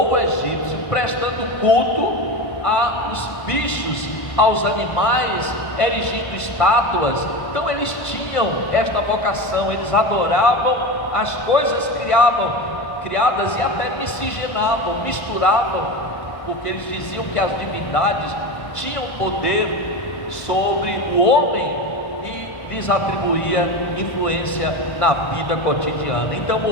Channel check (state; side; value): late; right; 1.2 ms